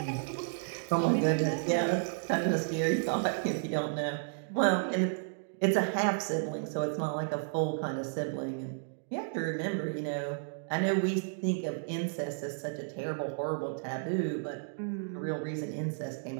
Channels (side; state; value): left; silent; digital silence